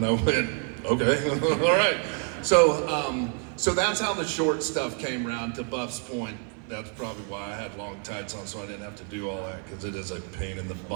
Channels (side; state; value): left; quieter; 36.8 dB